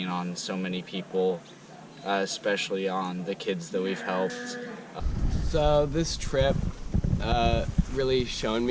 on so many people, especially on the kids that we've helped. So this trip really shown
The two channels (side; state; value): both; identical; correlation 1.00